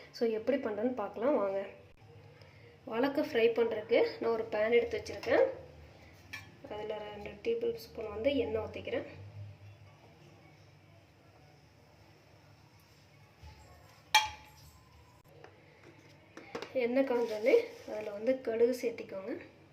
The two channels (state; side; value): identical; both; correlation 1.00